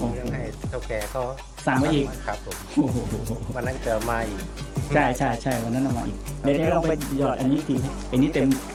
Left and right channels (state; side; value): identical; both; correlation 1.00